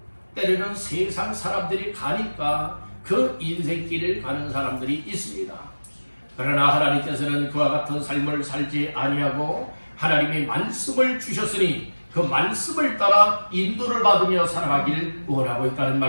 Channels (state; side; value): inverted; both; correlation -1.00